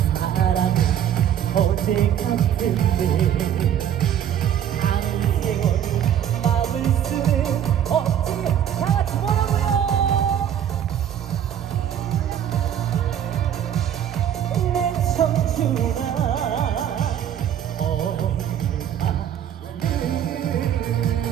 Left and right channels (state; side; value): quieter; left; 9.8 dB